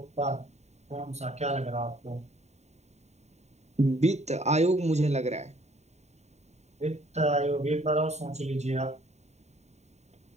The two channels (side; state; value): left; late; 0.32 ms